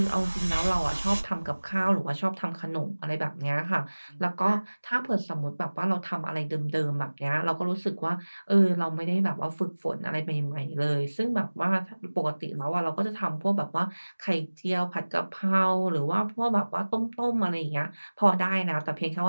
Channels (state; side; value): inverted; both; correlation -1.00